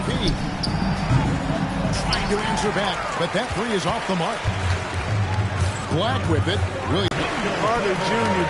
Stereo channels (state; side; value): identical; both; correlation 1.00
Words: Trying to answer back, but that 3 is off the mark. Black with it. Really. Carter